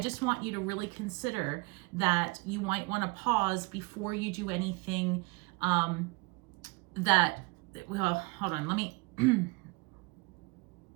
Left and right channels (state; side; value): quieter; left; 26.5 dB